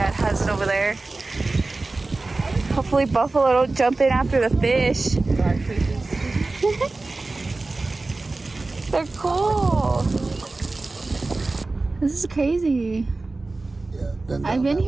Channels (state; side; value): quieter; left; 3.4 dB